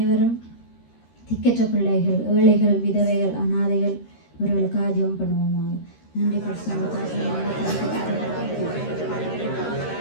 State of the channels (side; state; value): right; late; 13 ms